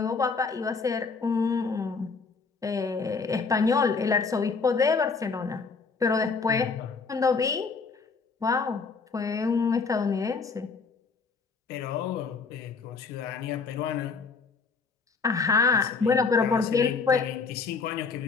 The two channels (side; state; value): right; quieter; 4.8 dB